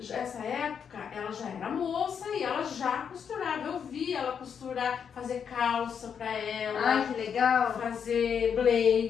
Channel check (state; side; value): quieter; right; 7.3 dB